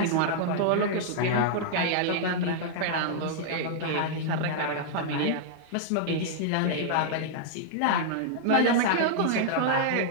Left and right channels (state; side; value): different; both; correlation -0.01